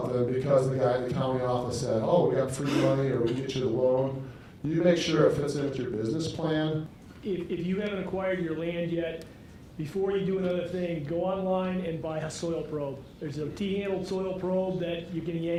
because the guy in the county office said, oh, we got free money or we get you the loan. You make sure it fits in with your business plan. If you haven't acquired your land yet, before you do another thing, go online and buy a soil probe. There's a T-handled soil probe that you can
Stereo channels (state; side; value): identical; both; correlation 1.00